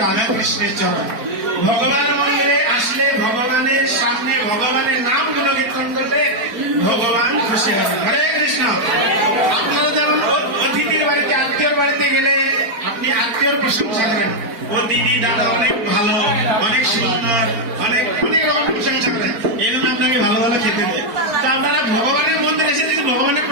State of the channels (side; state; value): left; late; 4.4 ms